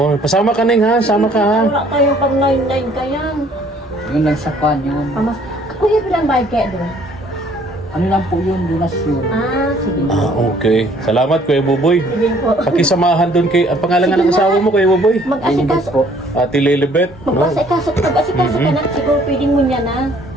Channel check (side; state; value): both; normal; correlation 0.59